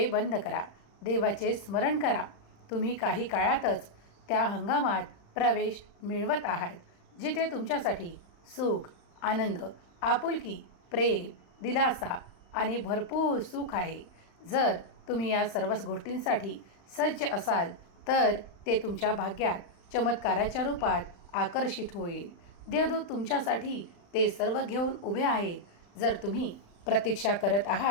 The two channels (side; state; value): right; late; 35 ms